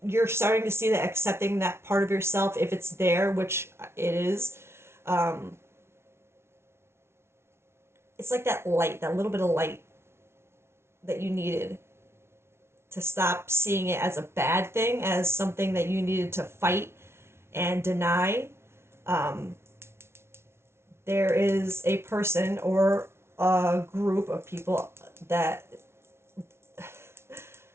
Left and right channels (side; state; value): left; late; 0.12 ms